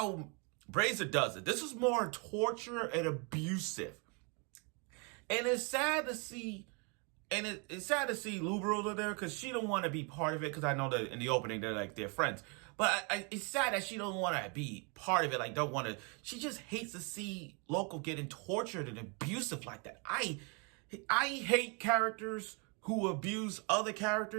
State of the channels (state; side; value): quieter; left; 33.6 dB